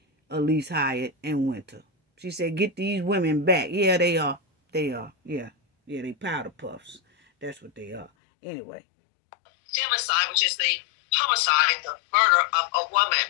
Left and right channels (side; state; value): right; drops out; at 8.1 s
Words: Elise Hyatt, and Winter. She said, get these women back. Yeah, they are. They are. Yeah, they powder puffs. That's what they are. Anyway. Femicide, which is the homicide, the murder of a woman.